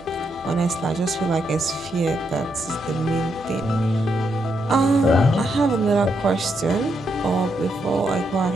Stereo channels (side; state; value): both; normal; correlation 0.80